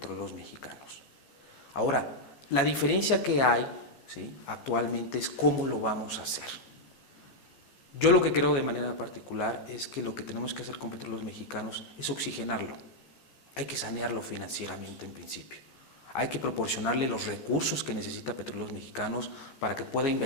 Mexicanos. Ahora, la diferencia que hay, ¿sí?, actualmente es cómo lo vamos a hacer. Yo lo que creo de manera particular es que lo que tenemos que hacer con Petróleos Mexicanos es oxigenarlo. Hay que sanearlo financieramente en principio. Hay que proporcionarle los recursos que necesita Petróleos Mexicanos para que pueda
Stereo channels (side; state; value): right; late; 15 ms